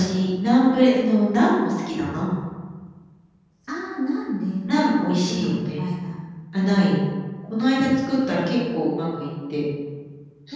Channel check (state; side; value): identical; both; correlation 1.00